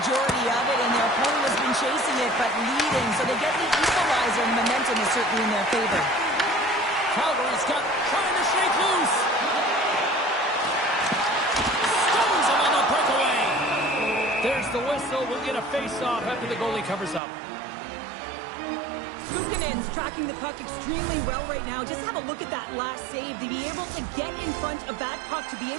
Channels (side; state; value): left; drops out; at 17.2 s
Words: of it, and their opponent has been chasing it but leading. So they get the equalizer, and momentum is certainly in their favor. Calgary's got trying to shake loose. Stones him on the breakaway. There's the whistle. We'll get a face-off after the goalie covers up. Luukkonen's tracking the puck extremely well right now. Just have a look at that last save. To be able to get in front of that puck, to be